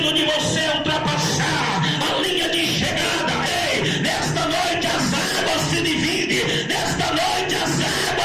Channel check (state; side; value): identical; both; correlation 1.00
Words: de você ultrapassar a linha de chegada, ei, nesta noite as águas se dividem, nesta noite as